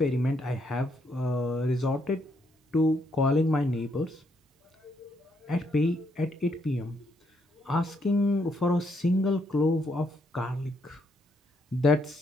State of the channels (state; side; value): normal; both; correlation 0.74